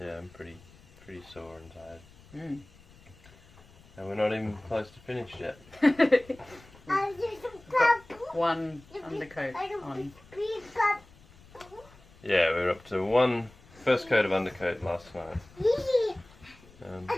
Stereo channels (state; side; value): noise; left; rumble, 25 dB below the sound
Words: I'm pretty sore and tired. And we're not even close to finished yet. One undercoat on. Yeah, we were up to one first coat of undercoat last night.